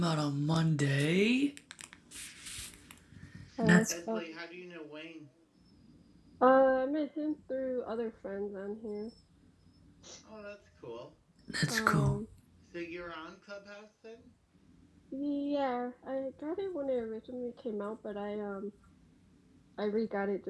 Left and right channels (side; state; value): both; identical; correlation 1.00